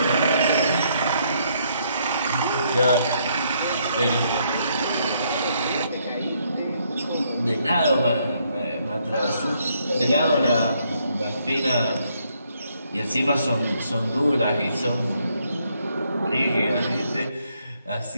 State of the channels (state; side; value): inverted; both; correlation -0.72